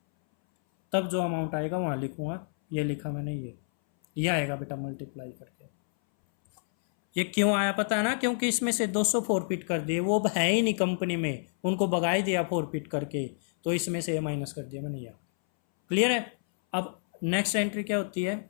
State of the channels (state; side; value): silent; right; 59 dB below the other